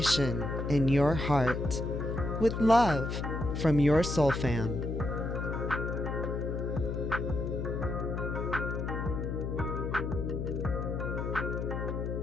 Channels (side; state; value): left; noise; hum, 3 dB below the sound